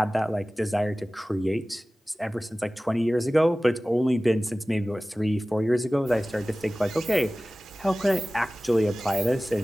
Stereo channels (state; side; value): normal; both; correlation 0.97